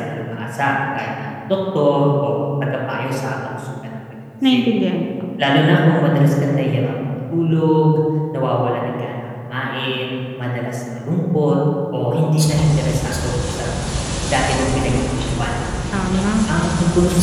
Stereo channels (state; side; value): identical; both; correlation 1.00